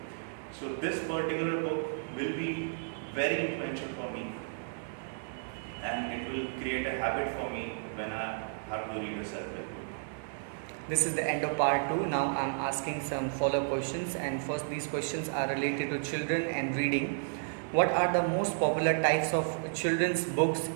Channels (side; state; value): left; silent; 56 dB below the other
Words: So this particular book will be very influential for me, and it will create a habit for me when I have to read a self-help book. This is the end of part 2. Now I'm asking some follow-up questions, and first these questions are related to children and reading. What are the most popular types of children's books